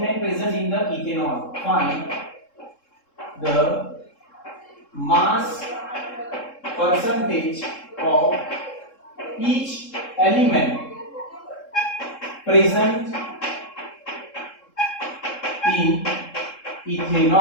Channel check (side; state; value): right; late; 3.7 ms